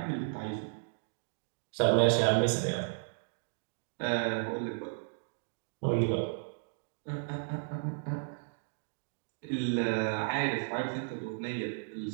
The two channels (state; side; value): silent; left; digital silence